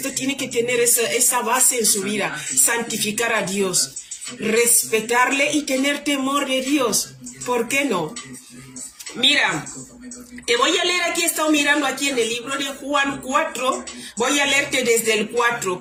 Tiene que tener esa base en su vida: santificar a Dios, respetarle y tener temor de Dios. ¿Por qué no? Mira, te voy a leer aquí, he estado mirando aquí en el libro de Juan 4, voy a leerte desde el 4,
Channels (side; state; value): both; identical; correlation 1.00